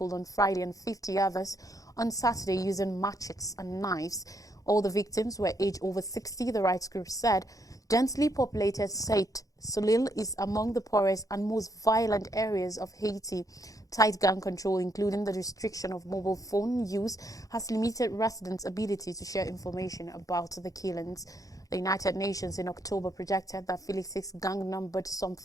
on Friday and 50 others on Saturday using machetes and knives. All the victims were aged over 60, the rights group said. Densely populated Saint Soleil is among the poorest and most violent areas of Haiti. Tight gun control, including the restriction of mobile phone use, has limited residents' ability to share information about the killings. The United Nations in October projected that Felix's gang numbered some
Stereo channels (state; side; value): late; right; 0.17 ms